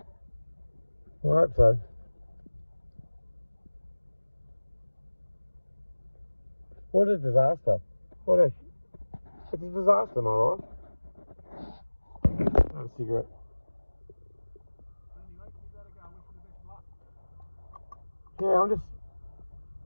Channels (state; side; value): inverted; both; correlation -1.00